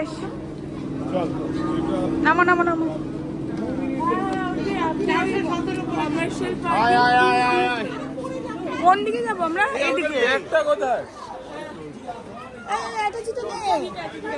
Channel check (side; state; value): both; identical; correlation 1.00